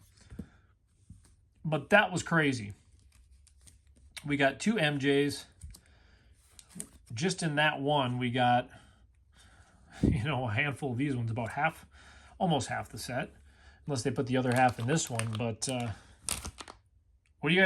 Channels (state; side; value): identical; both; correlation 1.00